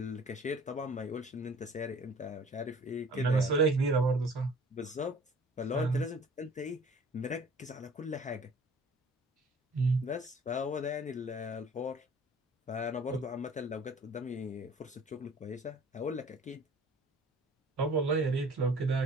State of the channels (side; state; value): both; normal; correlation 0.50